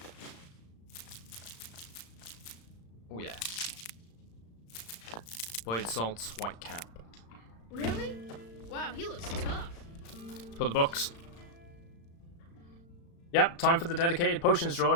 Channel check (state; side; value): late; right; 35 ms